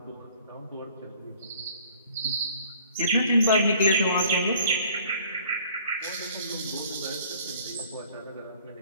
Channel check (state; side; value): inverted; both; correlation -0.54